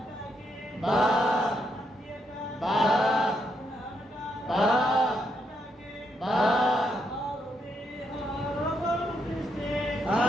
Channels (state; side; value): normal; both; correlation 0.78